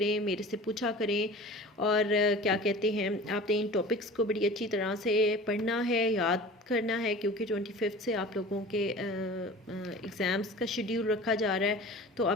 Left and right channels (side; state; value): both; normal; correlation 0.39